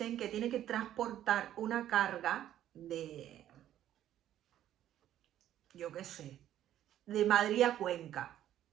que tiene que transportar una carga de, yo qué sé, de Madrid a Cuenca,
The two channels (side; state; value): left; quieter; 11.8 dB